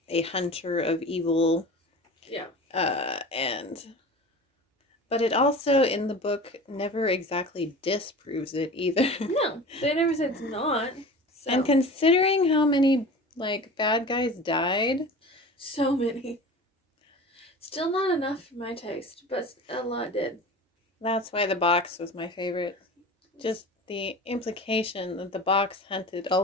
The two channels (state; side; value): normal; both; correlation 0.36